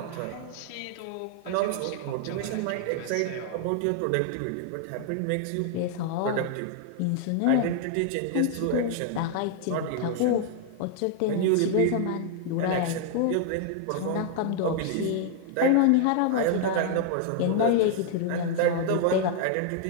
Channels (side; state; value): both; different; correlation 0.00